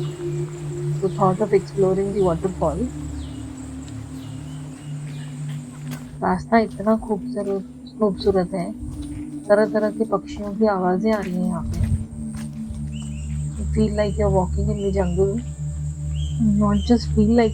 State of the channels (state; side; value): identical; both; correlation 1.00